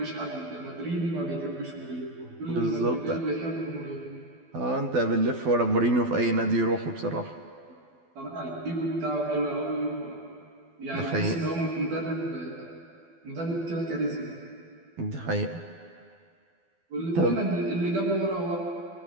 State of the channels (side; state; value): left; late; 12 ms